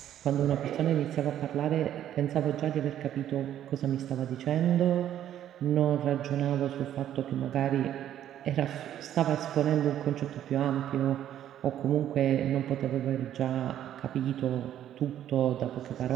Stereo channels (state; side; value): quieter; left; 11.1 dB